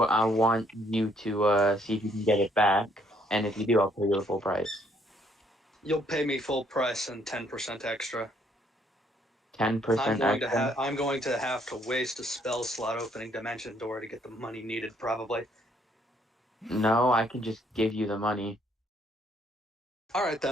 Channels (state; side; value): normal; both; correlation 0.67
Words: I want you to see if you can get it back, and if you do, I'll pay you the full price. You'll pay me full price and 10% extra. 10% extra? I'm going to have to waste a spell slot opening Dimension Door to get the money needed, probably. No, I can just give you the money. Alright